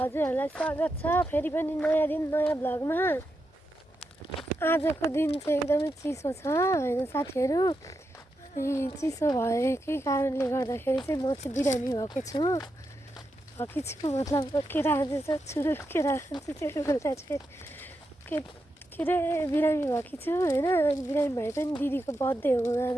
स्वागत छ फेरि पनि नयाँ दिन नयाँ भ्लगमा। आजको दिन चाहिँ एकदमै चिसो छ हैन साथीहरु। अनि चिसो भएकै कारणले गर्दाखेरि चाहिँ म चाहिँ बिरामी भएको छु। मतलब केरा चाहिँ छुरु केरा चाहिँ बेला चाहिँ के रे बिरामी भएकी छु हैन। बिरामी भए पनि दिदीको बर्थडे हो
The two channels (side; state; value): both; normal; correlation 0.86